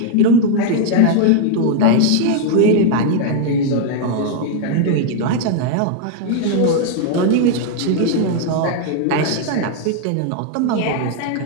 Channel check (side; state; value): both; different; correlation 0.00